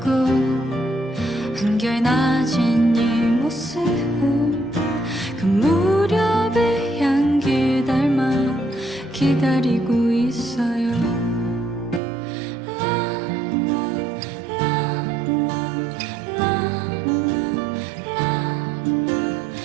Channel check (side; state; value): left; drops out; at 12.0 s